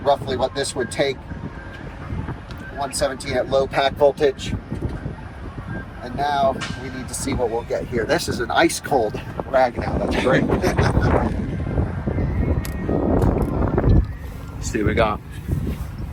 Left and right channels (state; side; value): identical; both; correlation 1.00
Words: what this would take. 117 at low pack voltage. And now we need to see what we'll get here. This is an ice cold rag now. That's great. Let's see what we got.